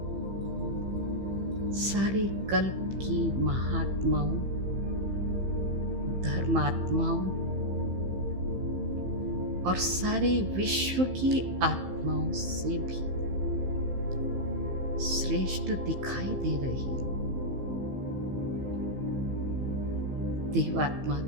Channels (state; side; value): late; left; 15 ms